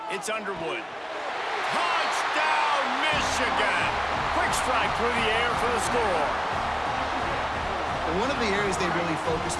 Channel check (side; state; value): both; identical; correlation 1.00